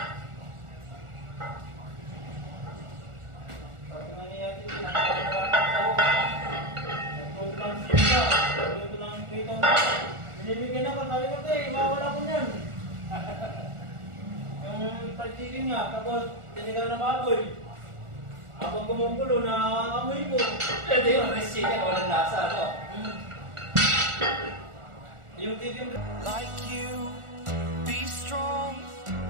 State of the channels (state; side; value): late; left; 1.4 ms